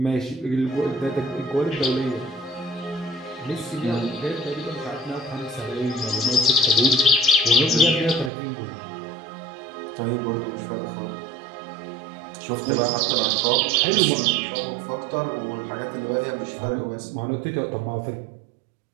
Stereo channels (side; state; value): left; drops out; at 8.3 s